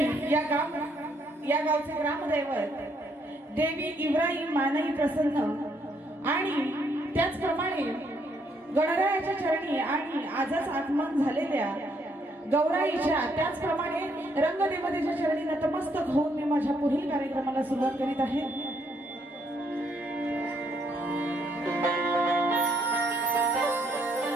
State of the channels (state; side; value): normal; both; correlation 0.72